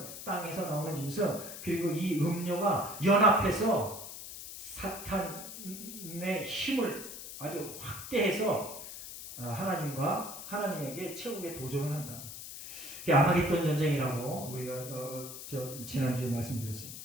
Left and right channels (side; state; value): left; noise; hiss, 10 dB below the sound